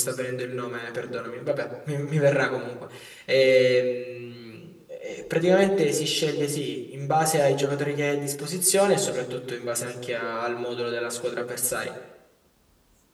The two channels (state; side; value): identical; both; correlation 1.00